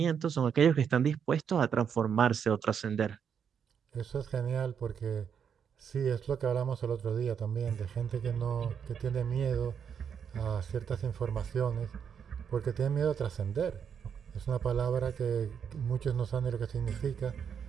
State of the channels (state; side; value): quieter; left; 7.5 dB